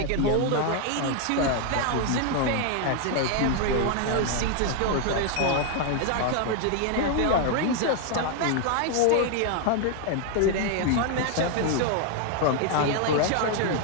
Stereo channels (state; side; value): different; both; correlation 0.00